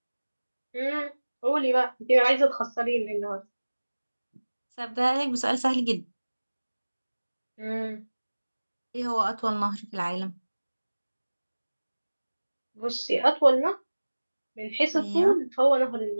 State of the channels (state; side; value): inverted; both; correlation -1.00